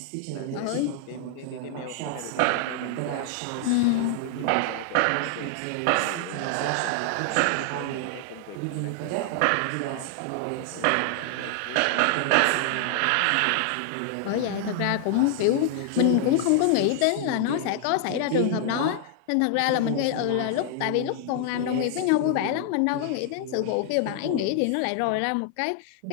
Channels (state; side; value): different; both; correlation 0.00